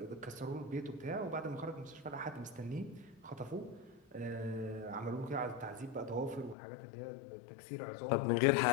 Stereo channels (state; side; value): drops out; right; at 6.6 s